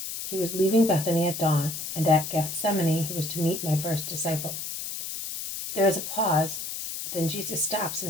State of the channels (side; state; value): left; noise; hiss, 6 dB below the sound